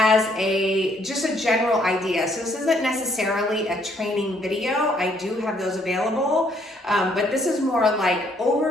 just a general idea. So this isn't necessarily a training video. I do have those available, but this is more like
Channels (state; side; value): normal; both; correlation 0.67